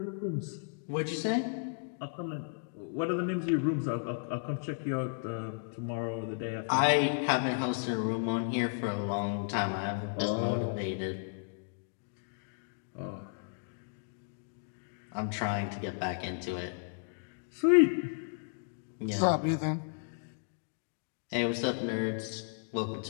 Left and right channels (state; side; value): silent; right; digital silence